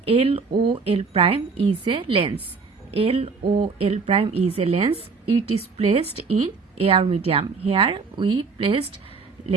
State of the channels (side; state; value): left; quieter; 4.8 dB